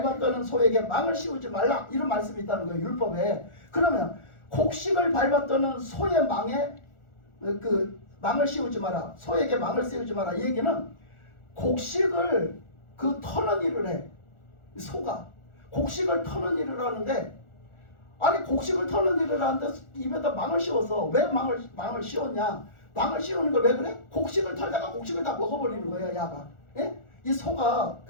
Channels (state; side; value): late; right; 1.4 ms